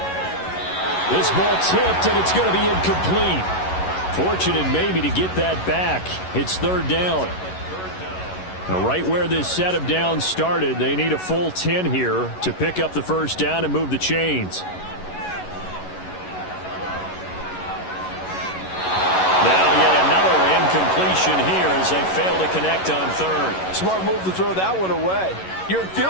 This ball tipped, and it's going to be incomplete. Fortunate maybe to get that back. It's 3rd down. Now, right where this set of downs started, they need a full 10 here to pick up the 1st down and move the chains. Now yet another incompletion here as they fail to connect on 3rd. Smart move to throw that one away. You're in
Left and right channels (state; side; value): late; right; 11 ms